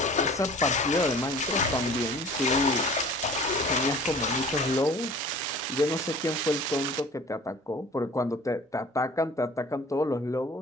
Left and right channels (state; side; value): normal; both; correlation 0.46